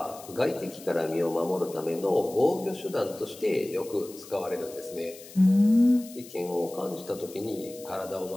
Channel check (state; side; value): noise; left; hiss, 18 dB below the sound